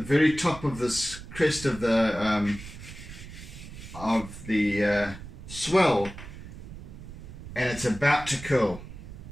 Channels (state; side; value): noise; right; rumble, 13 dB below the sound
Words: top of this crest of the swell, and it's about to curl.